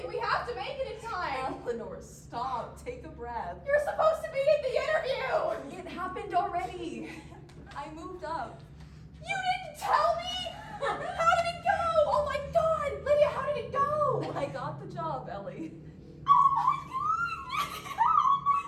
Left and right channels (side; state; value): both; identical; correlation 1.00